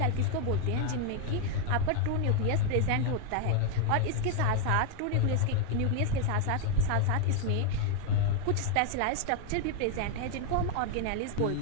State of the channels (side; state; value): both; different; correlation 0.00